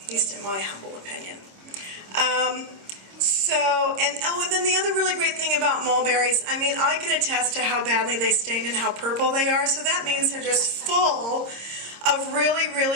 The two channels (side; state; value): left; late; 26 ms